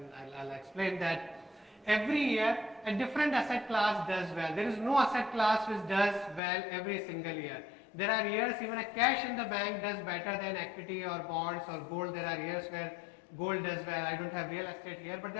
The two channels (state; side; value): drops out; right; at 6.4 s